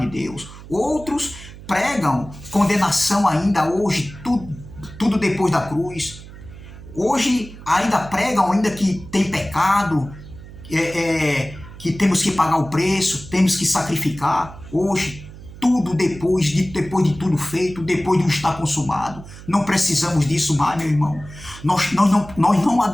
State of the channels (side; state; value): right; noise; hum, 16 dB below the sound